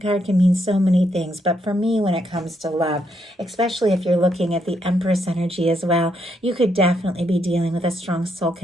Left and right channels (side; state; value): both; normal; correlation 0.77